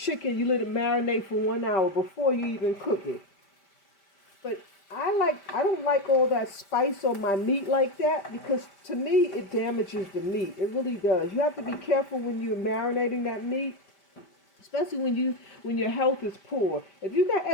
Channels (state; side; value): late; right; 5.1 ms